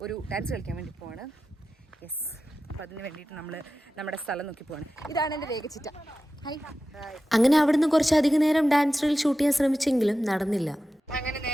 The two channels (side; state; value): both; normal; correlation 0.93